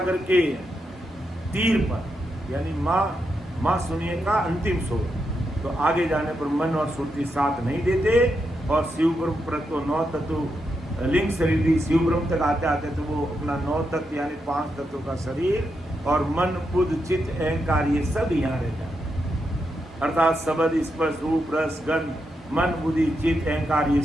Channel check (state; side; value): normal; both; correlation 0.84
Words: के तीर पर, यानी माँ शून्य का अंतिम छोर, तो आगे जाने पर मन और सुरती साथ नहीं देते, और शिव ब्रह्म पर तो 9 तत्व लिंग शरीर भी शिव ब्रह्म तक आते आते तो वो अपना 9 तत्व यानी 5 तत्वों का शरीर और मन बुद्ध चित्त अहंकार ये सब यहाँ रहता है, अर्थात शब्द स्पर्श रूप रस गंध मन बुद्धि चित्त अहंकार ये